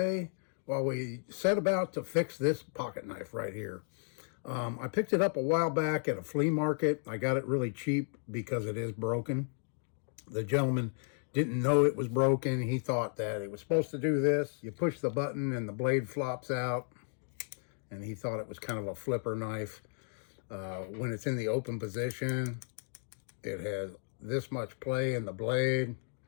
while we set about to fix this pocket knife right here. I picked it up a while back at a flea market. I got it really cheap because it is broken. The gentleman didn't know it was broken. He thought that it was supposed to do this. You push the button and the blade flops out, and he thought it was kind of a flipper knife. When it's in the open position, it has this much play in the blade,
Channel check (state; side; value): silent; right; 55 dB below the other